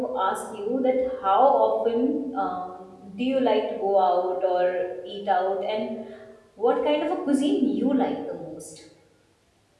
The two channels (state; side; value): identical; both; correlation 1.00